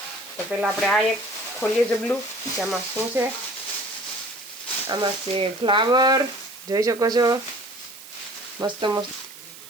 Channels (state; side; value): noise; right; hiss, 17 dB below the sound